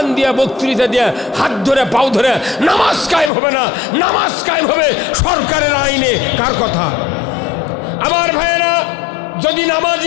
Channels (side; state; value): right; drops out; at 3.3 s